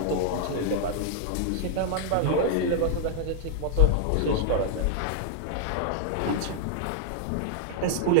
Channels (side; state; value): both; different; correlation -0.01